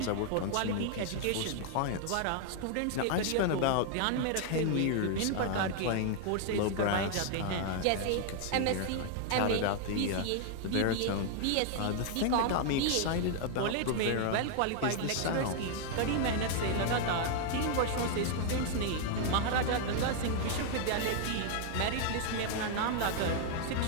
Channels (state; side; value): different; both; correlation 0.00